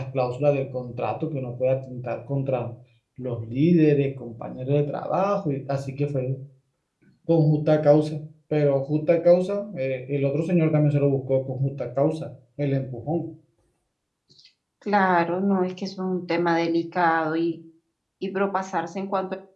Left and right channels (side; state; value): both; identical; correlation 1.00